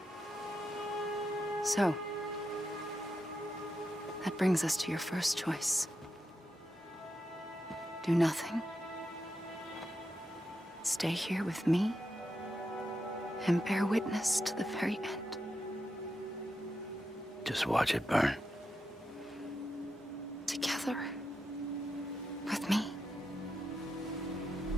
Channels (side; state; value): both; normal; correlation 0.86